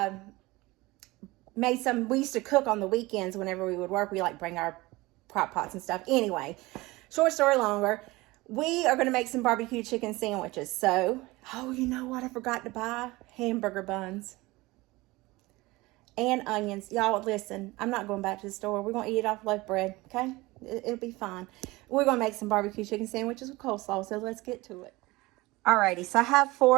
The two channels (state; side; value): quieter; left; 21.2 dB